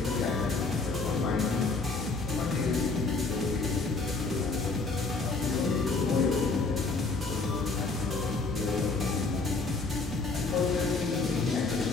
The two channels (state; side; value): quieter; right; 3.8 dB